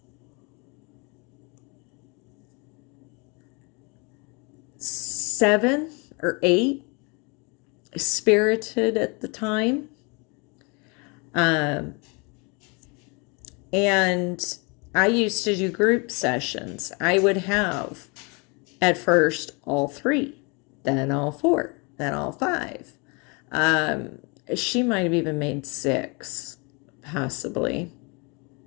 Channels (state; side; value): quieter; right; 31.0 dB